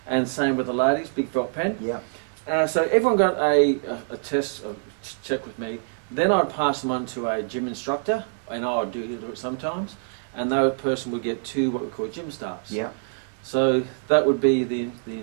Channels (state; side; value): silent; left; digital silence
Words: And same with the ladies, big felt pen. Yeah. So everyone got a test, a check with me. Then I'd pass them on to a gym instructor, and I would do it sometimes, and that person would get 2 what we call gym starts. Yeah. So that would be the